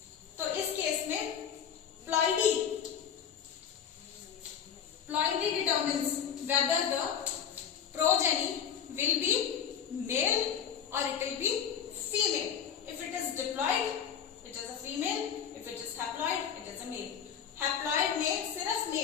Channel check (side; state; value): right; quieter; 8.1 dB